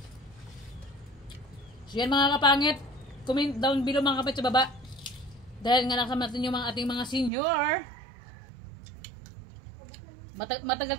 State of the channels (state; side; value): drops out; left; at 7.3 s